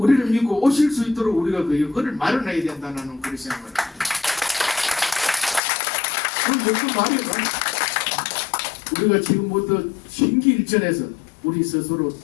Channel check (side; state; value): right; drops out; at 5.6 s